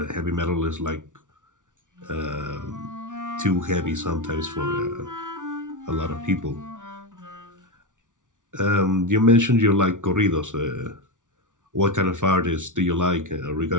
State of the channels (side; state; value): left; late; 0.87 ms